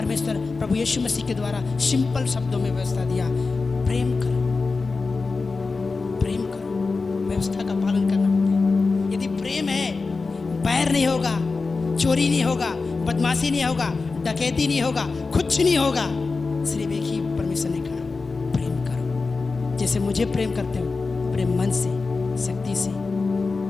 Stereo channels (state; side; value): quieter; right; 4.1 dB